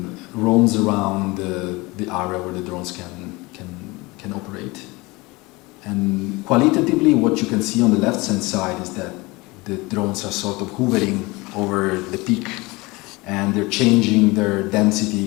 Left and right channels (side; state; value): right; quieter; 23.6 dB